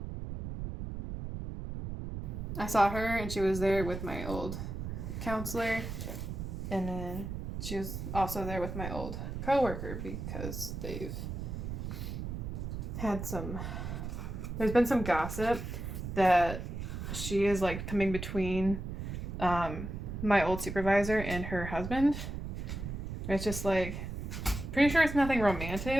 I saw her and she was there with my old counselor. And then she was also there with my old coworker because they've had some... There's been some gossip that she is like coming between my old supervisor and her husband. It's just like, pretty sure it's nothing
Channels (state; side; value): noise; right; rumble, 6 dB below the sound